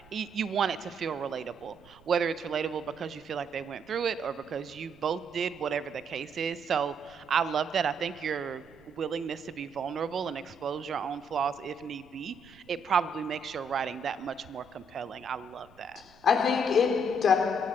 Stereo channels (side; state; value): right; noise; rumble, 26 dB below the sound